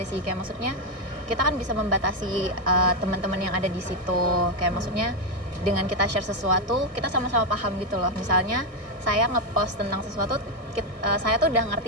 sih, kayak maksudnya kita kan bisa membatasi teman-teman yang ada di situ, kayak maksudnya dengan kita share sesuatu kita sama-sama paham gitu loh. Misalnya saya ngepost tentang sesuatu, saya tuh udah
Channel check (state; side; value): late; left; 1.6 ms